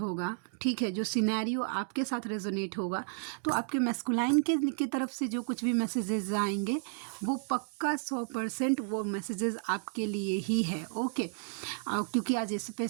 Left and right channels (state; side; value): silent; left; digital silence